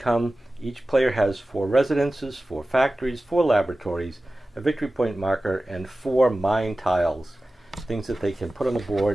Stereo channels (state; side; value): normal; both; correlation 0.96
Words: Each player has 4 residences, 4 factories, 4 laboratories, a victory point marker, and 4 mine tiles, things that they can put on the